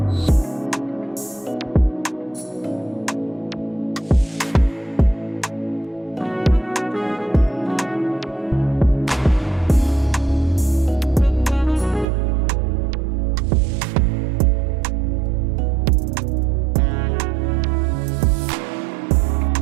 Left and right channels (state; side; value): drops out; left; at 12.1 s